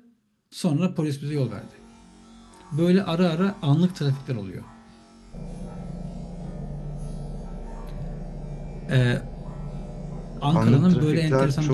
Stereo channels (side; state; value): both; identical; correlation 1.00